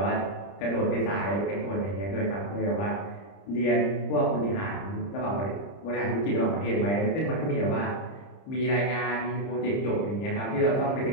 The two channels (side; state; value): right; late; 30 ms